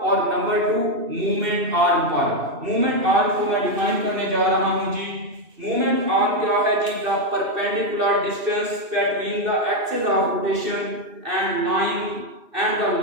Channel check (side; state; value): left; late; 2.8 ms